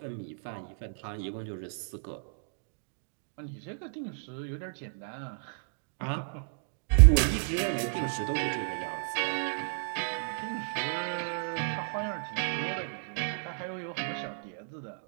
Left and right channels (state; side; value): silent; left; digital silence